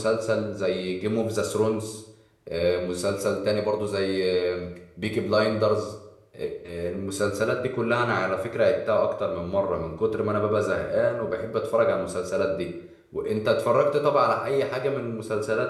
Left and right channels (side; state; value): both; identical; correlation 1.00